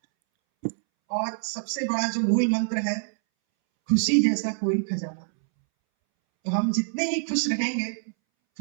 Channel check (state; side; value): silent; left; 61 dB below the other